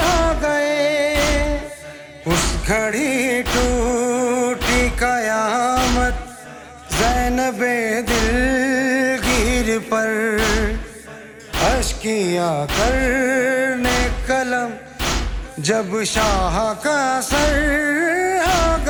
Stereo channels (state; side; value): identical; both; correlation 1.00